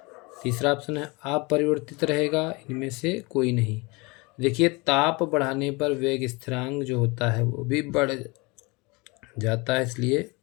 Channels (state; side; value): quieter; right; 26.3 dB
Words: तीसरा ऑप्शन है अपरिवर्तित रहेगा, इनमें से कोई नहीं। देखिए ताप बढ़ाने पर वेग स्थिरांक जो होता है वो भी बढ़ जाता है, इसलिए